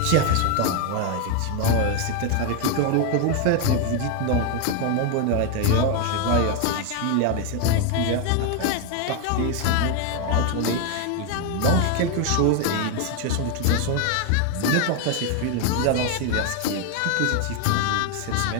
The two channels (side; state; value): both; different; correlation 0.01